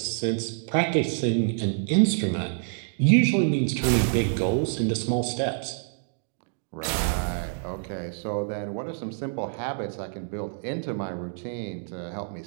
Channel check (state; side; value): silent; left; digital silence